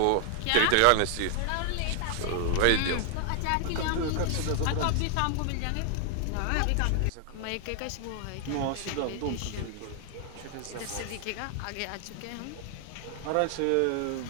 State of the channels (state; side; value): different; both; correlation 0.00